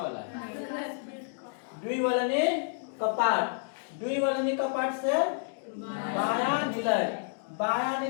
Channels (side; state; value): right; silent; digital silence